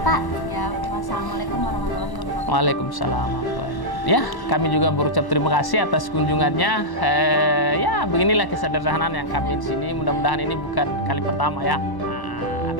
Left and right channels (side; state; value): right; late; 1.1 ms